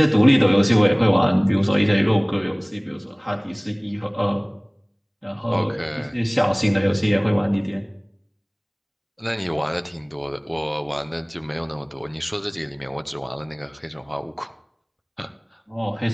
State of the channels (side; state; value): both; identical; correlation 1.00